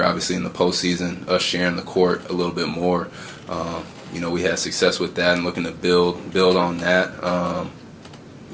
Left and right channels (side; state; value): both; identical; correlation 1.00